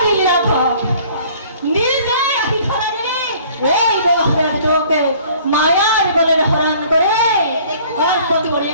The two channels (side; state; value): both; inverted; correlation -0.53